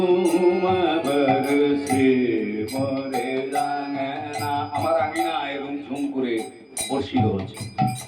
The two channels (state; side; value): identical; both; correlation 1.00